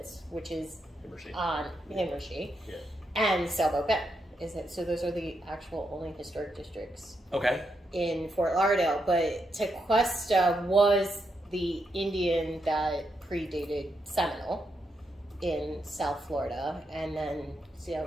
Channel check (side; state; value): both; normal; correlation 0.82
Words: which is on Himmershey, and Sailboat Bend. So those are the actual only historic districts in Fort Lauderdale. But Tequesta was the Indian that predated Seminole in South Florida. And then,